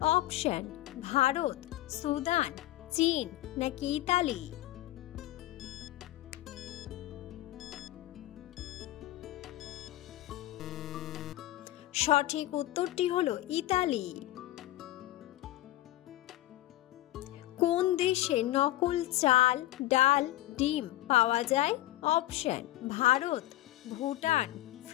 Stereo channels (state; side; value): quieter; right; 15.9 dB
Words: অপশন: ভারত, সুদান, চীন নাকি ইতালি। সঠিক উত্তরটি হলো ইতালি। কোন দেশে নকল চাল, ডাল, ডিম পাওয়া যায়? অপশন: ভারত, ভুটান,